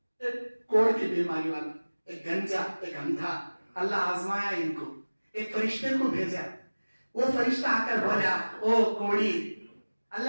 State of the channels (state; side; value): inverted; both; correlation -1.00